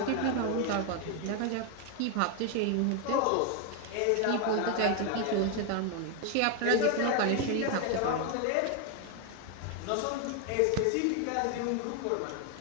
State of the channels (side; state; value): both; different; correlation 0.01